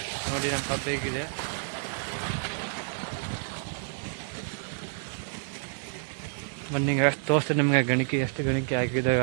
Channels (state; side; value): silent; left; digital silence